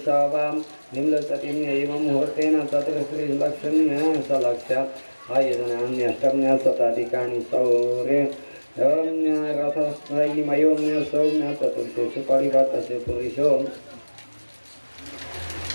स वां निम्नचतिं एवं मुहूर्तेन चतुर्श्रीलक्ष्म्य सलक्ष्य आयोजनान्यष्टम्य शताधिकानि सौर्य रथस्त्रयीमयो सौम्य चतुर्थेषु परिवर्तस्य पुरुषो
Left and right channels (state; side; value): inverted; both; correlation -1.00